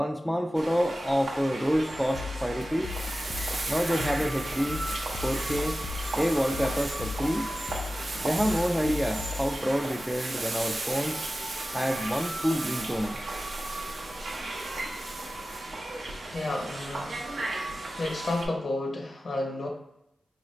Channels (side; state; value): both; normal; correlation 0.95